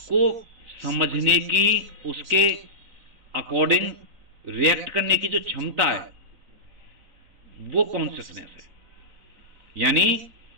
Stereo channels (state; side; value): late; left; 4.0 ms